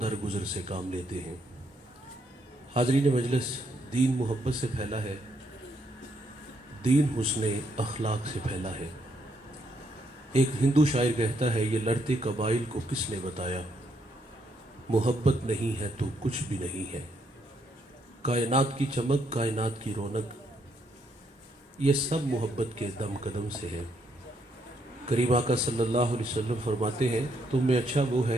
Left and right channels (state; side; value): normal; both; correlation 0.74